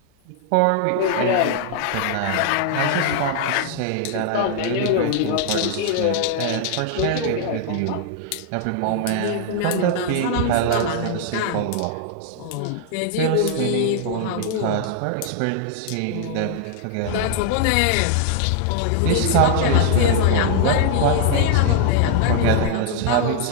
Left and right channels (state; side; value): different; both; correlation 0.00